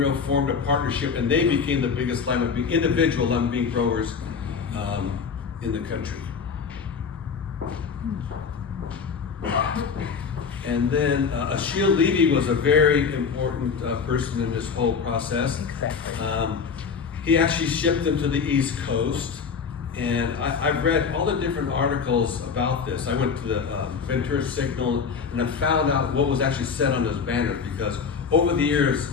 formed a partnership, and they became the biggest individual lima bean growers in the country. And then Achille Levy was a very important person in this whole process. Exactly. He actually shipped them to the East Coast. And I've read all the different articles about this. I went to the Ventura Signal and I found out what was actually said on those banners, because over the years,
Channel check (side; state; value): right; quieter; 5.9 dB